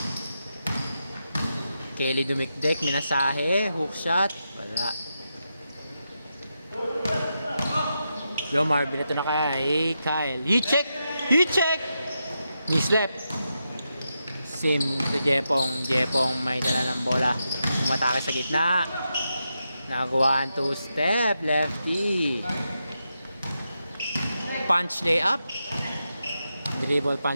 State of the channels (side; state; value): both; inverted; correlation -0.86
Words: Kelly dumikdik, minasahe, hook shot, wala. Jomar, binato na kaya, Kyle. He check! Mislep. Sim to Jepong. Jepong may dala ng bola. Umatake sa gitna. Nagawa 2 step, lefty. Punch layup. Dribble